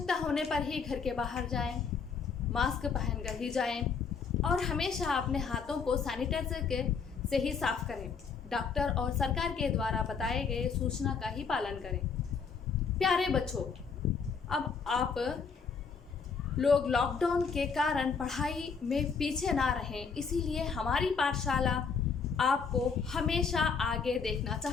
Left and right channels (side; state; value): right; quieter; 5.7 dB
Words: होने पर ही घर के बाहर जाएं, मास्क पहनकर ही जाएं और हमेशा अपने हाथों को सैनिटाइजर से ही साफ करें। डॉक्टर और सरकार के द्वारा बताए गए सूचना का ही पालन करें। प्यारे बच्चों, अब आप लोग लॉकडाउन के कारण पढ़ाई में पीछे ना रहें, इसीलिए हमारी पाठशाला आपको हमेशा आगे देखना